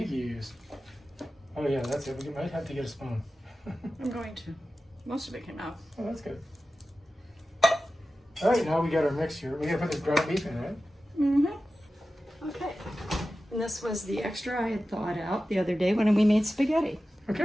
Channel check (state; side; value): normal; both; correlation 0.94